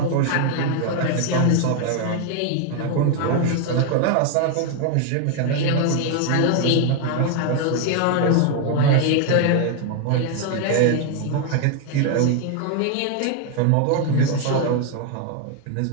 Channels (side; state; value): both; different; correlation 0.00